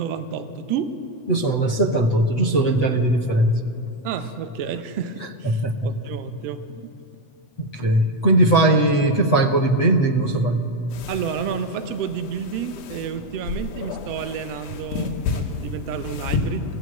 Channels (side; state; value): right; late; 8.0 ms